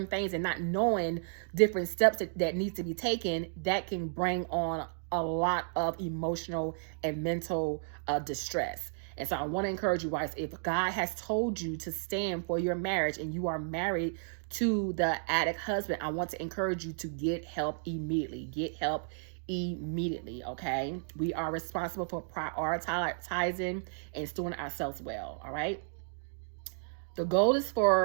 things and not knowing different steps that needs to be taken, that can bring on a lot of emotional and mental distress. And so I want to encourage you guys, if God has told you to stand for your marriage and you are married to the addict husband, I want to encourage you to get help immediately. Get help immediately, okay? We are responsible for prioritizing and stewarding ourselves well, all right? The goal is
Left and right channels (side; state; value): left; silent; digital silence